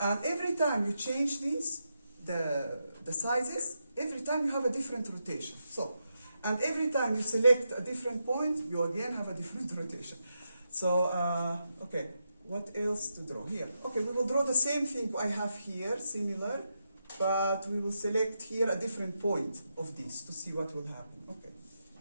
And every time you change these, the sizes, every time you have a different rotation. So, and every time you select a different point, you again have a different rotation. So, okay, what else to draw here? Okay, we will draw the same thing I have here, similar, but we will select here a different point of this to see what will happen. Okay,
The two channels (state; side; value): inverted; both; correlation -0.85